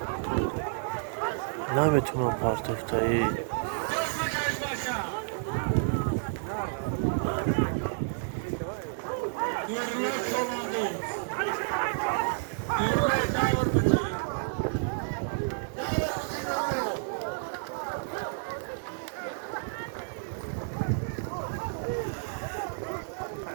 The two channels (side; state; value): left; silent; digital silence